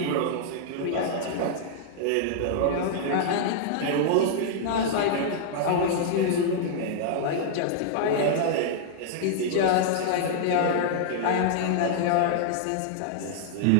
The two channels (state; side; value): different; both; correlation -0.01